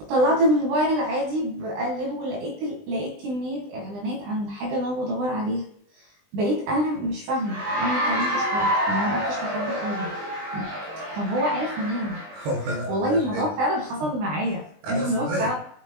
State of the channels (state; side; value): late; left; 20 ms